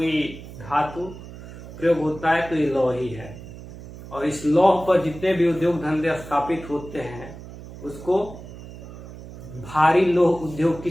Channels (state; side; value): noise; right; hum, 14 dB below the sound